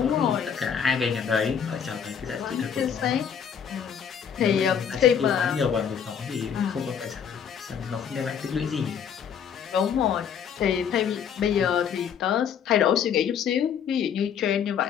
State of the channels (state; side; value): quieter; right; 7.8 dB